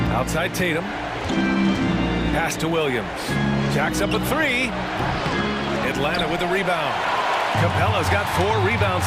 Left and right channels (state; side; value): identical; both; correlation 1.00